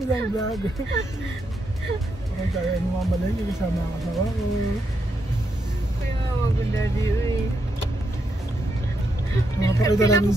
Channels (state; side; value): normal; both; correlation 0.81